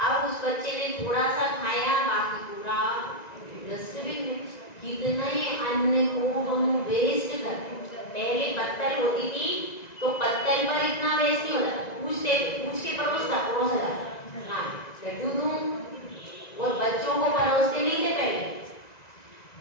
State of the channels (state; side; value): late; right; 1.9 ms